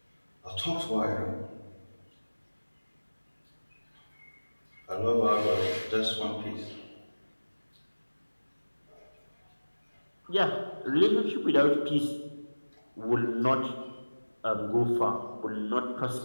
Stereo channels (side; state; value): both; inverted; correlation -1.00